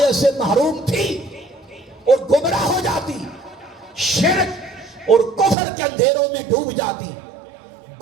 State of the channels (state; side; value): drops out; left; at 5.6 s